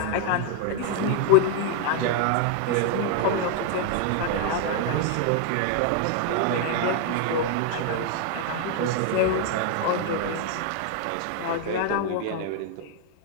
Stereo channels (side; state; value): both; different; correlation 0.00